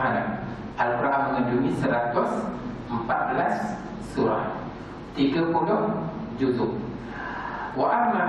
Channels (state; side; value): identical; both; correlation 1.00